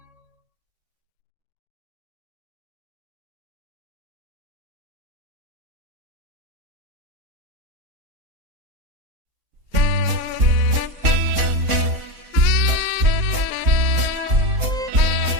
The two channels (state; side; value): late; left; 3.7 ms